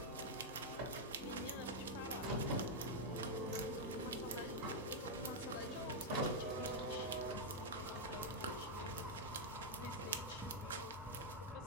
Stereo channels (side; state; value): both; normal; correlation -0.03